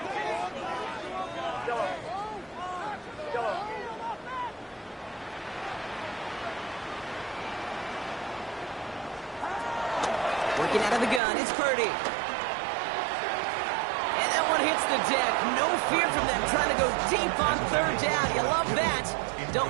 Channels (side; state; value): left; drops out; at 11.2 s